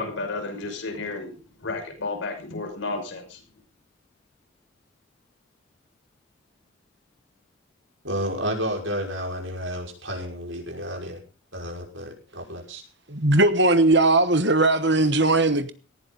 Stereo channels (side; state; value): both; normal; correlation 0.00